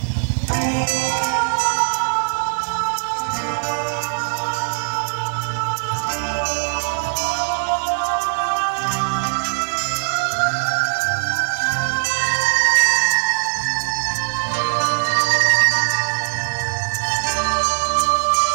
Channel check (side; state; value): left; silent; 63 dB below the other